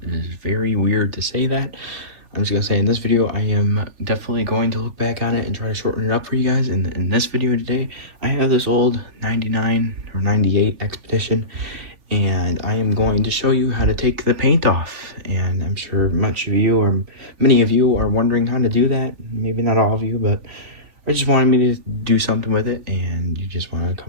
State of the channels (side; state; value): left; late; 3.4 ms